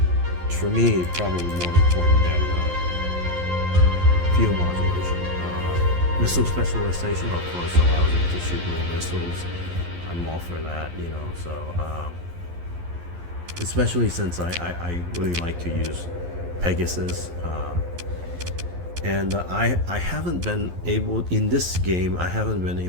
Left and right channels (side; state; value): left; late; 11 ms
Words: for me, probably more important than fuel modulation. Missile specialization, of course, allows you to shoot more missiles. I'm all for that, you know. So especially since I really like to use Pegasus. And I haven't been able, in this game, I haven't been